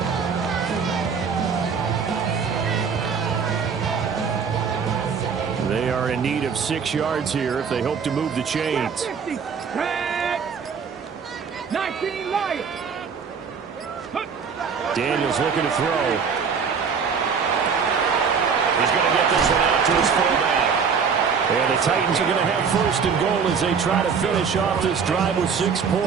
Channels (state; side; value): quieter; left; 6.1 dB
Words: They are in need of 6 yards here if they hope to move the chains. 19 Lions. Daniels looking to throw. He's going to get this one out to his fullback. And the Titans are going to have 1st and goal as they try to finish off this drive with 6